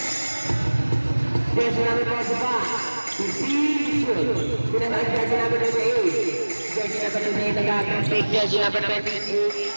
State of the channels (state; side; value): inverted; both; correlation -1.00